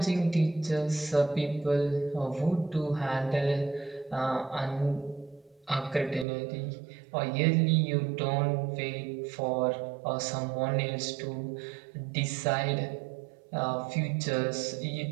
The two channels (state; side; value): drops out; left; at 6.2 s